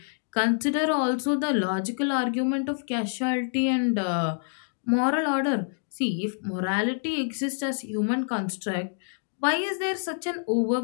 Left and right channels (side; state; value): right; silent; digital silence